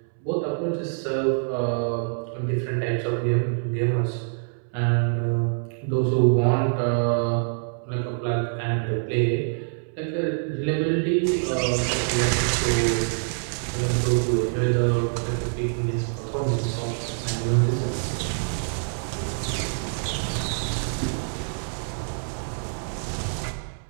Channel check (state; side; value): silent; left; 61 dB below the other